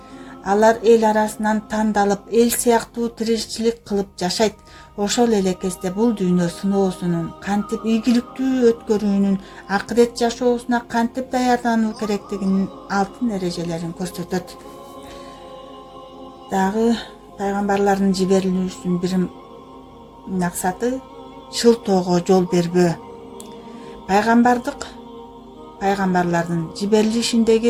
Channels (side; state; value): both; identical; correlation 1.00